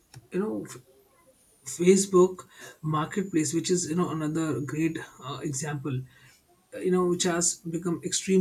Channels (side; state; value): both; identical; correlation 1.00